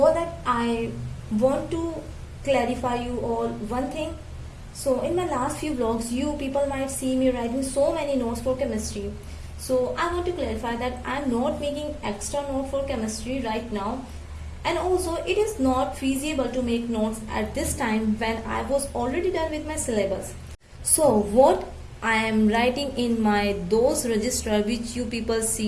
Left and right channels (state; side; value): identical; both; correlation 1.00